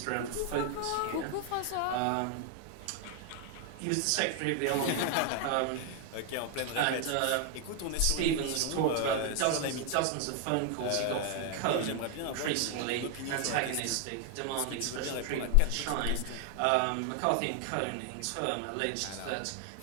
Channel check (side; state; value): both; different; correlation 0.00